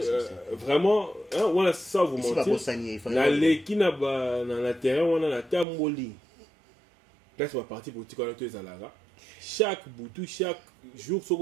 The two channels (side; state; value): left; drops out; at 5.7 s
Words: Vraiment on a ça vous mentir na leki na ba na terrain wana na tamboli place ba parti politique wana to ezalaka chaque boutou chaque jour